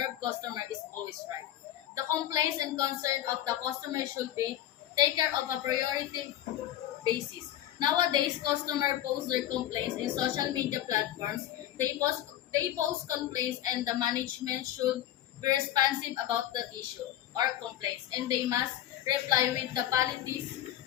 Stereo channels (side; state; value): right; quieter; 12.6 dB